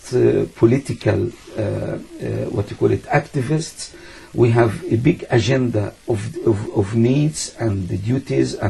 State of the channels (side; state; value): both; identical; correlation 1.00